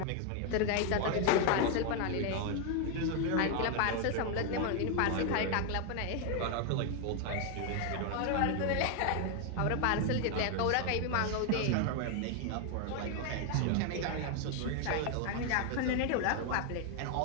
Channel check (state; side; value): different; both; correlation 0.01